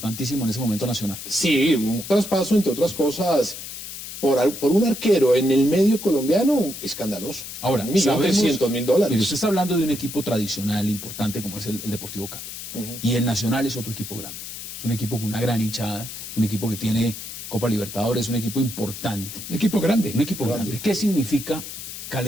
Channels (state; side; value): noise; left; hiss, 10 dB below the sound